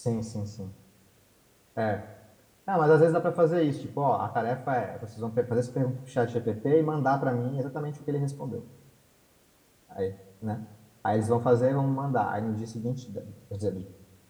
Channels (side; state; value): both; identical; correlation 1.00